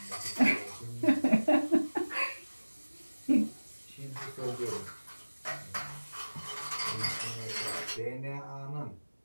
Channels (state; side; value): inverted; both; correlation -1.00